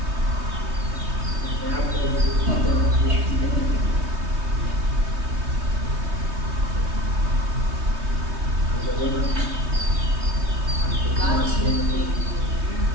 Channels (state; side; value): late; left; 3.2 ms